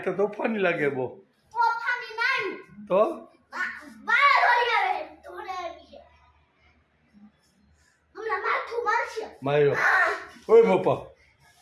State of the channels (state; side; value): identical; both; correlation 1.00